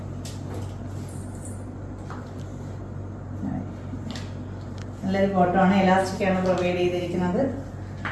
നല്ലൊരു ബോട്ടം ആണ്, എലാസ്റ്റിക് ആണ് പ്രൊവൈഡ് ചെയ്തിരിക്കുന്നത്.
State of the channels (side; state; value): both; identical; correlation 1.00